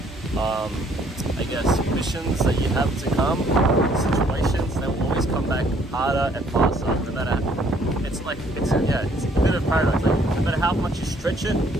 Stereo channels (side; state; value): both; normal; correlation 0.63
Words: I guess missions that you have to come, situations, they will always come back harder and faster. No matter, it's a bit of paradox. Like, no matter how much you stretch it,